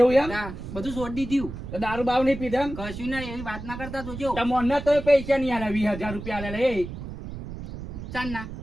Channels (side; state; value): right; noise; rumble, 10 dB below the sound